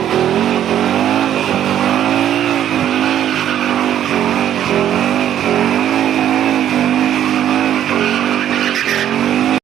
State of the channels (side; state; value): left; quieter; 10.8 dB